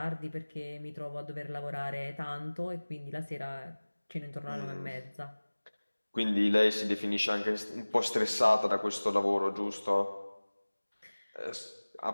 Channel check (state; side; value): inverted; both; correlation -1.00